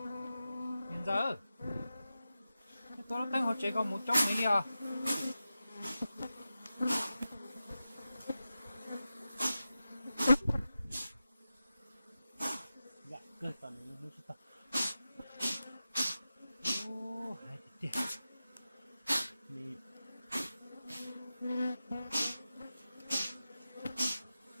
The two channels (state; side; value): inverted; both; correlation -0.93